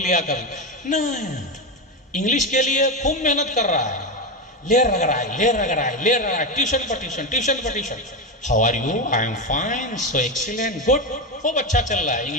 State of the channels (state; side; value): normal; both; correlation 0.13